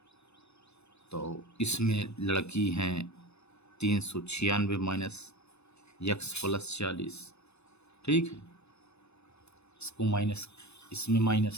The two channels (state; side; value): late; right; 0.80 ms